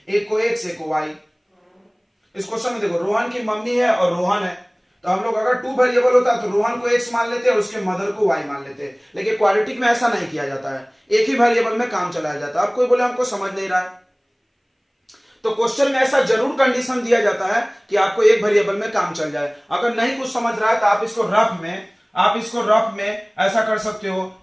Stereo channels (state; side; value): identical; both; correlation 1.00